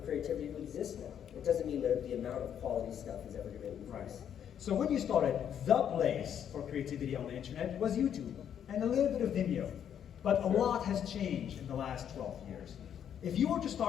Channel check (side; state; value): right; quieter; 9.1 dB